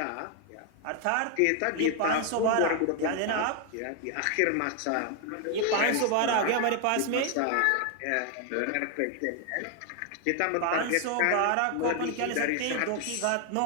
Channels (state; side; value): different; both; correlation 0.00